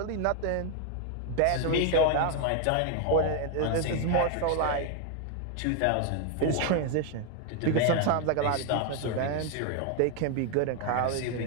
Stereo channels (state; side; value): different; both; correlation 0.00